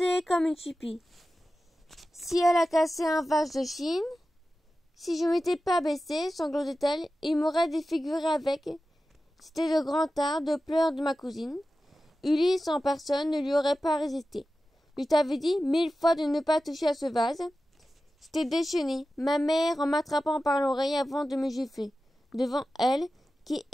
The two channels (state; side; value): normal; both; correlation 0.94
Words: comme une chipie. Si elle a cassé un vase de Chine, si je m'étais pas baissée, sanglotait-elle, il m'aurait défiguré avec. C'était de grand art de pleurs de ma cousine. Ulysse en personne ne lui aurait pas résisté. Je t'avais dit 1000 fois de ne pas toucher à ce vase. J'étais déchaînée, ma mère en m'attrapant par l'oreille avant de me gifler. Devant elle, qui